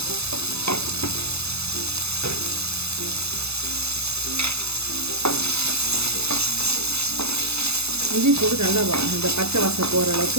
இஞ்சி பூண்டு நல்லா இந்த பச்சை வாசம் போகிற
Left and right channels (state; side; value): late; left; 0.79 ms